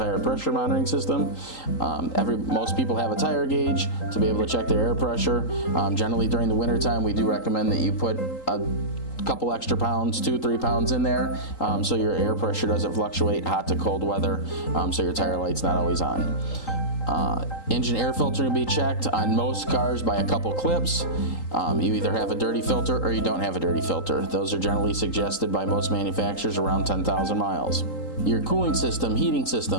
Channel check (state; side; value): late; right; 3.8 ms